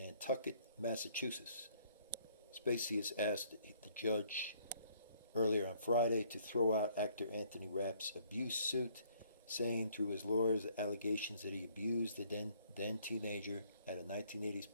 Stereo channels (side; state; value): both; inverted; correlation -0.63